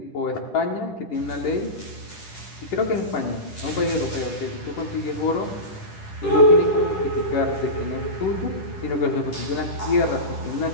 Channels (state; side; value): late; right; 10 ms